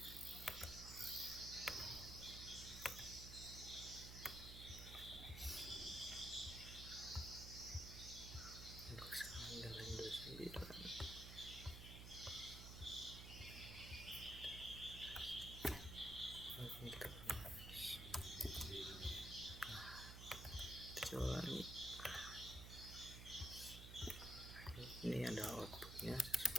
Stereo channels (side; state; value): right; noise; hum, 9 dB below the sound